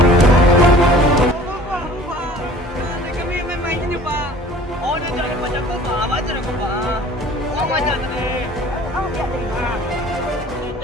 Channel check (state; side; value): normal; both; correlation 0.48